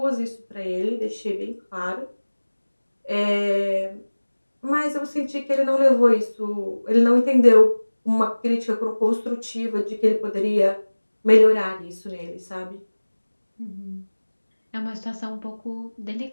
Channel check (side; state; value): both; inverted; correlation -1.00